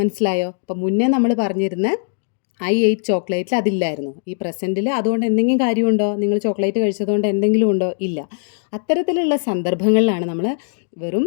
അപ്പോൾ മുന്നേ നമ്മൾ പറഞ്ഞിരുന്ന ഐ എയ്റ്റ് ചോക്ലേറ്റിൽ അതില്ലായിരുന്നു. ഈ പ്രസൻറ്റിൽ അതുകൊണ്ട് എന്തെങ്കിലും കാര്യമുണ്ടോ? നിങ്ങൾ ചോക്ലേറ്റ് കഴിച്ചതുകൊണ്ട് എന്തെങ്കിലും ഉണ്ടോ? ഇല്ല. അത്തരത്തിലുള്ള സന്ദർഭങ്ങളിലാണ് നമ്മൾ വെറും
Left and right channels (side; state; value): right; silent; digital silence